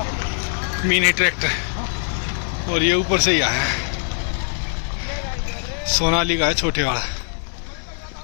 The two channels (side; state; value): right; silent; digital silence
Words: मिनी ट्रैक्टर, और ये ऊपर से ही आया है, सोनाली का है, छोटे वाला